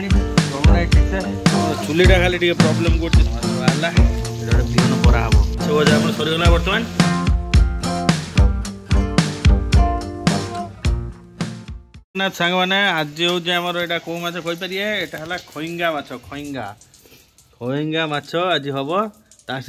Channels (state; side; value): identical; both; correlation 1.00